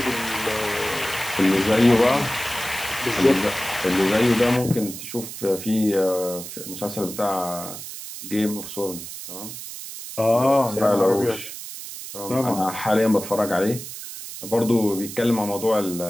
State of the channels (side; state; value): right; noise; hiss, 10 dB below the sound